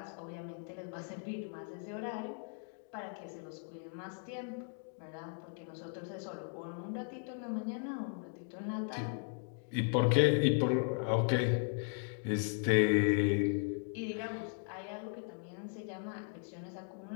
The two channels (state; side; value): silent; right; 53 dB below the other